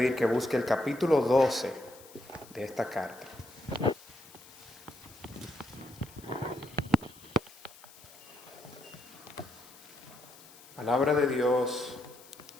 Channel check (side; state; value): left; noise; hiss, 21 dB below the sound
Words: que busque el capítulo 12 de esta carta. Palabra de Dios,